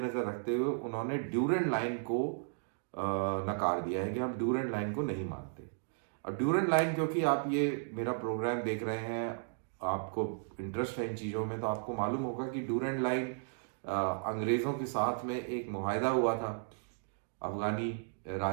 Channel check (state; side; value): silent; left; digital silence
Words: रखते हुए उन्होंने ड्यूरेंट लाइन को नकार दिया है कि हम ड्यूरेंट लाइन को नहीं मानते। और ड्यूरेंट लाइन, क्योंकि आप ये मेरा प्रोग्राम देख रहे हैं, आपको इंटरेस्ट है इन चीजों में, तो आपको मालूम होगा कि ड्यूरेंट लाइन अंग्रेजों के साथ में एक मुआहदा हुआ था अफगानी